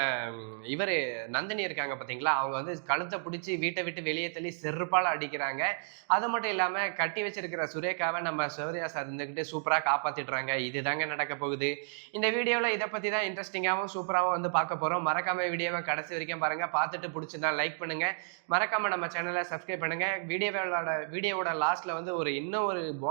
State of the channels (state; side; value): silent; left; digital silence